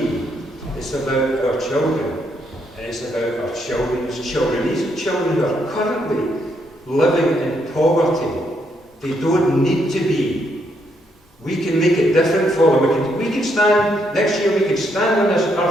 It's about our children. And it's about our children's children. These children who are currently living in poverty. They don't need to be. We can make it different for them. We can stand, next year we can stand on this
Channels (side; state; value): both; normal; correlation 0.75